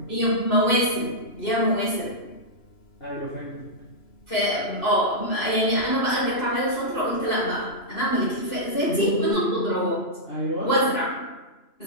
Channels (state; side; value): late; right; 2.9 ms